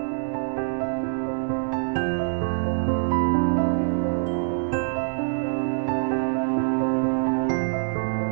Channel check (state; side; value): silent; left; digital silence